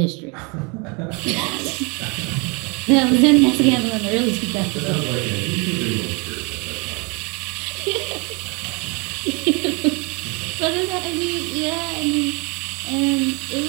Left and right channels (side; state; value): left; quieter; 30.7 dB